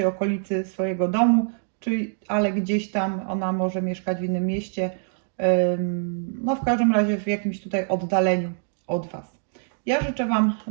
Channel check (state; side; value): silent; left; digital silence